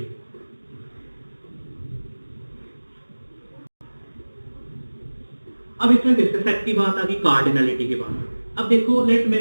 अब इसमें किसके सेट की बात आ गई, कार्डिनलिटी की बात। अब देखो लेट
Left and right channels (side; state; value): both; inverted; correlation -1.00